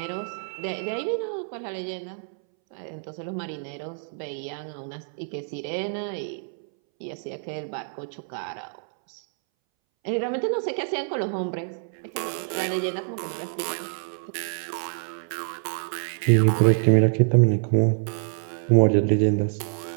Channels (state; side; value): silent; left; 61 dB below the other